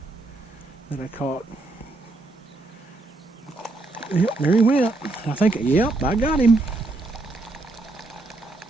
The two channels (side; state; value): left; quieter; 3.0 dB